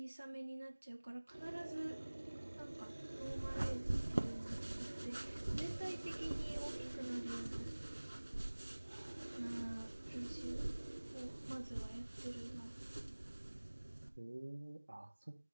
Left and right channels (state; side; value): inverted; both; correlation -1.00